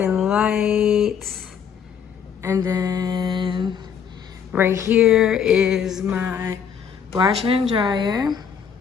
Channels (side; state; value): right; quieter; 7.5 dB